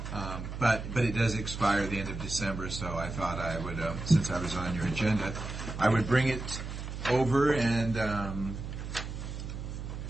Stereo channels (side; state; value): right; noise; hum, 7 dB below the sound